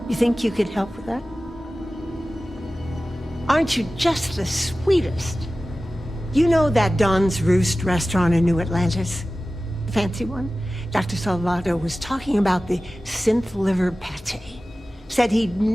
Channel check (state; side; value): normal; both; correlation 0.96